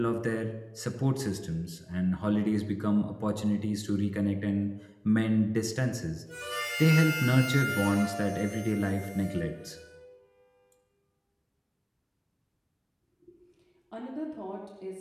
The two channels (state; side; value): identical; both; correlation 1.00